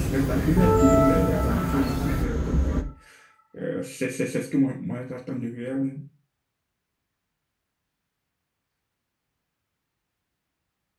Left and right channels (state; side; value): identical; both; correlation 1.00